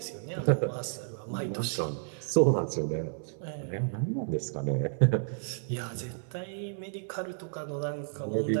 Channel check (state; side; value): silent; left; digital silence